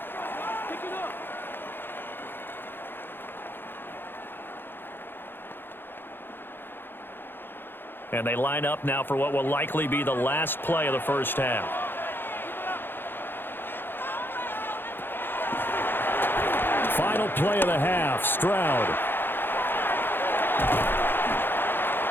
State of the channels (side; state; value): right; late; 0.10 ms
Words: And they line up now for what will likely be the last play of the first half. Final play of the half, Stroud.